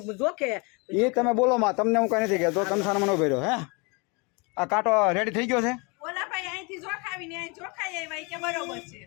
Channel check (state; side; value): quieter; right; 30.1 dB